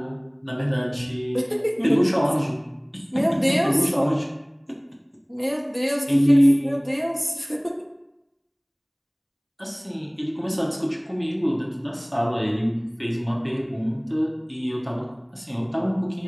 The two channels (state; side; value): identical; both; correlation 1.00